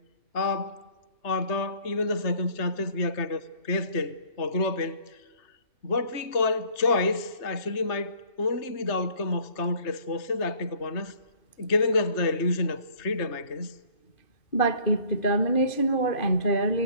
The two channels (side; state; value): right; late; 3.3 ms